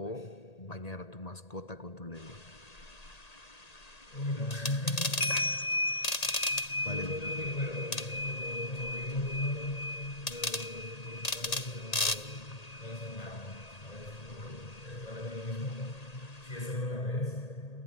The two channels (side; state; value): right; late; 1.8 ms